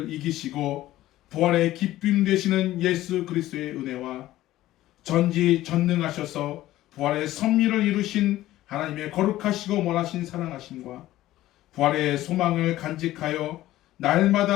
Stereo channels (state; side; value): quieter; right; 15.2 dB